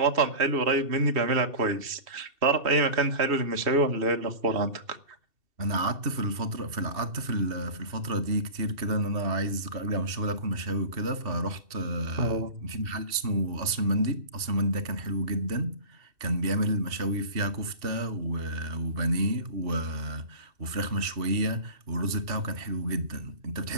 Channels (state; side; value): late; left; 2.7 ms